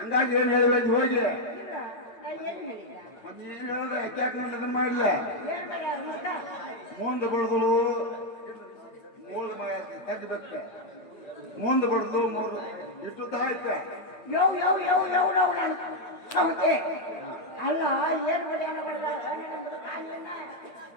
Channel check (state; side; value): late; right; 8.8 ms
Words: ಏನ್ ಹೇಳಿ ಬಂದಿ ಹೋಗಿ? ನೀನ್ ಹೇಳ್ದ ಯಾಕೆ ಅದನ್ನ ಮಾಡ್ಲ? ಮುಂದೆ ಬಡ್ದಲು ಮೂಲ ತೆಗಿಬೇಕ, ಮುಂದೆ ಬಡ್ದು ಮೂರು ಇಷ್ಟು ತರ ಐತೆ. ಅಲ್ಲ ಏನ್